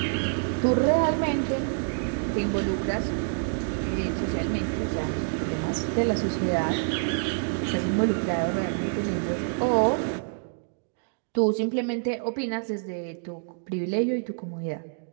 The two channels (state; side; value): silent; left; digital silence